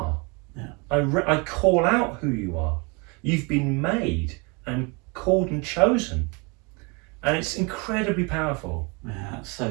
Yeah. I call out who you are. You've been made and called and chosen. And it's incredibly powerful. Yeah, that's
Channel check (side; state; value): left; quieter; 30.1 dB